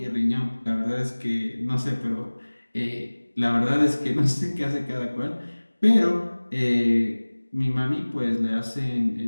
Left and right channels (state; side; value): inverted; both; correlation -1.00